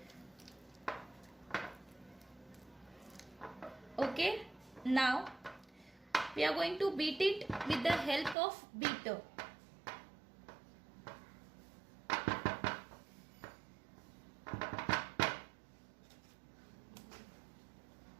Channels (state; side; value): drops out; left; at 8.3 s